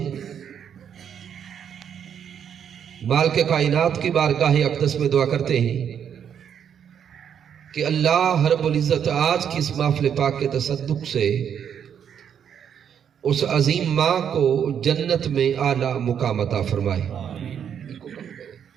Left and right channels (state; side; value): quieter; left; 8.4 dB